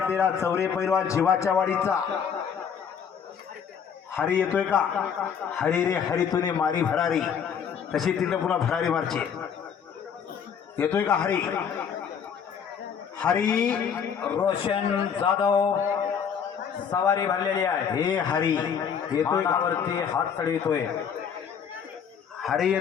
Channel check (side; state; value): right; quieter; 7.4 dB